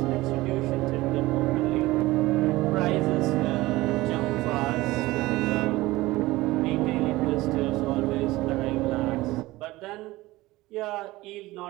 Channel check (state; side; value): quieter; left; 19.0 dB